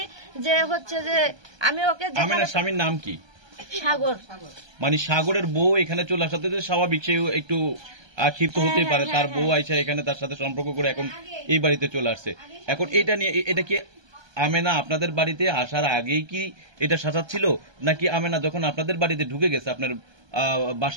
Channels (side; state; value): left; late; 1.3 ms